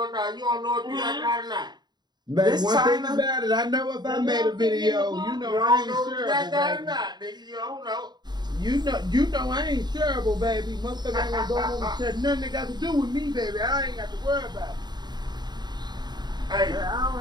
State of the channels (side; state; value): left; late; 0.21 ms